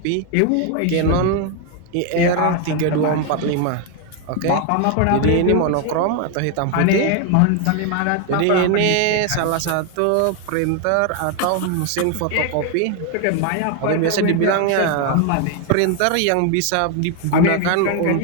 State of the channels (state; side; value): different; both; correlation 0.01